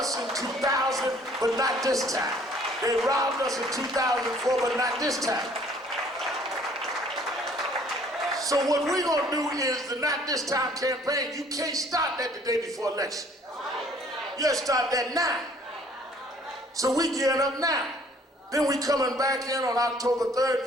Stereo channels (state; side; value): normal; both; correlation 0.58